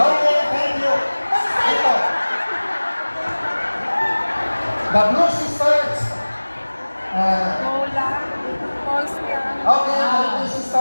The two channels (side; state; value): both; inverted; correlation -1.00